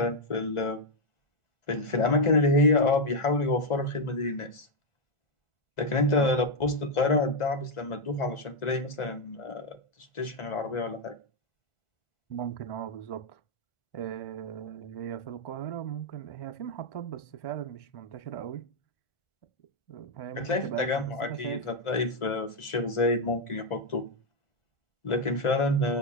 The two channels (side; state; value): right; late; 1.4 ms